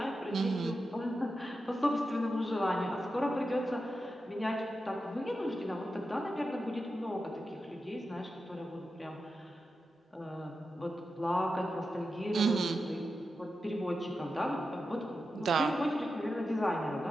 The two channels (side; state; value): both; normal; correlation 0.90